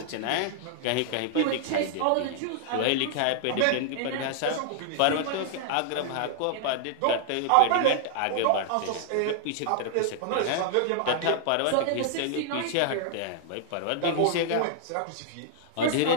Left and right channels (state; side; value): different; both; correlation -0.01